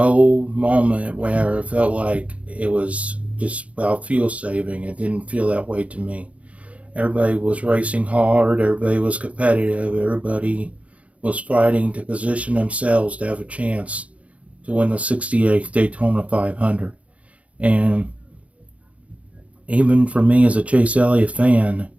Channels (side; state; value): left; late; 0.065 ms